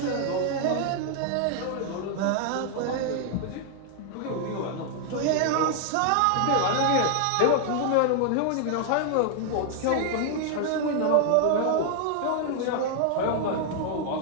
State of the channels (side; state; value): both; different; correlation 0.00